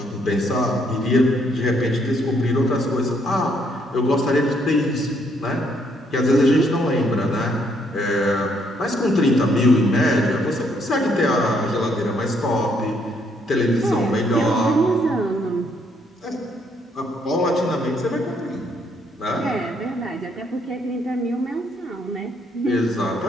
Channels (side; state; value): both; normal; correlation 0.71